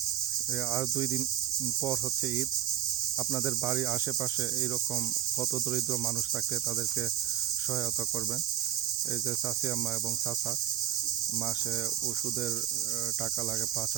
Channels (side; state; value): left; quieter; 11.4 dB